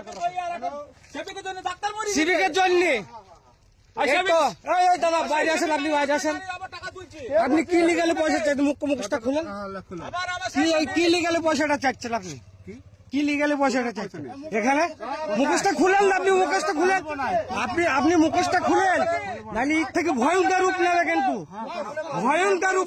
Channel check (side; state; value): both; identical; correlation 1.00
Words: সিভিকের জন্য দাদা বাইরে আসেন, আপনি বাইরে আসেন। আপনি কি লিগালে পয়সা চাইছেন? মুখটা খুলেন। কি লিগালে পয়সাটা চাচ্ছেন? আপনি কি লিগালে পয়সাটা চাইছেন? এখানে মুখোশটা খুলেন না, আপনি মুখোশটা খুলেন, আপনি মুখোশটা খুলেন, নাহলে এর থেকে ভয়ঙ্কর রূপ নেবে, কিন্তু ভয়ঙ্কর